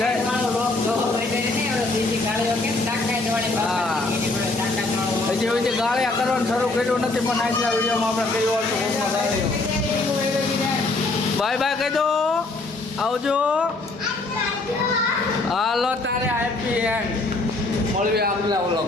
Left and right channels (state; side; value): quieter; right; 3.2 dB